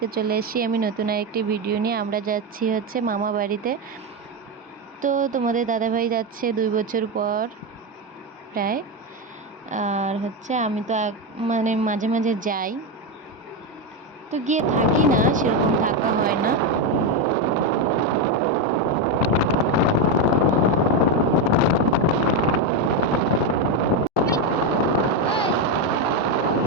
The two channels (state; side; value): normal; both; correlation 0.09